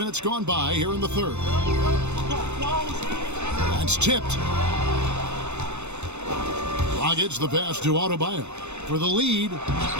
gone by here in the third. That's tipped. Dragic the pass to Adebayo for the lead.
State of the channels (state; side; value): late; left; 0.82 ms